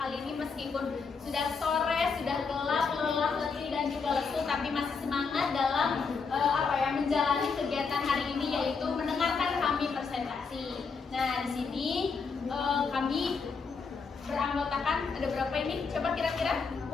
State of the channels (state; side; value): quieter; right; 5.1 dB